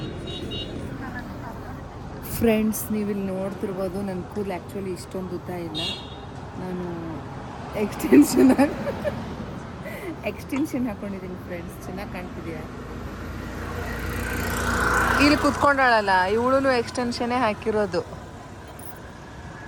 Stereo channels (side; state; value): both; identical; correlation 1.00